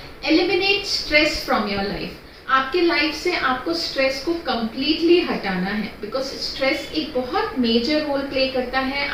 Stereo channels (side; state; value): both; identical; correlation 1.00